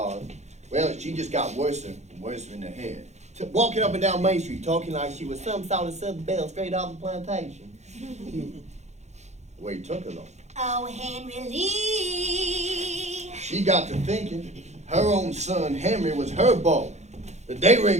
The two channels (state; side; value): late; left; 0.33 ms